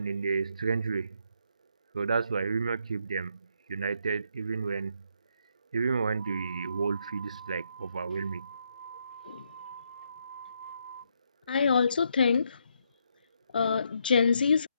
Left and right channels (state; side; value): inverted; both; correlation -0.77